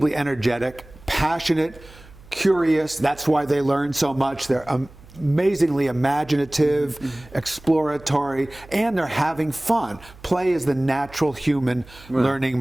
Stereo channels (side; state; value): right; noise; hum, 22 dB below the sound